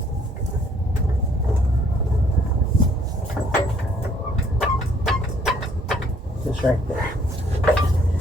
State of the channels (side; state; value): both; normal; correlation 0.63